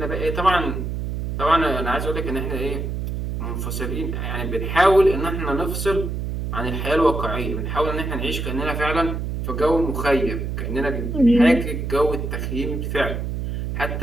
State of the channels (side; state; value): right; noise; hum, 3 dB below the sound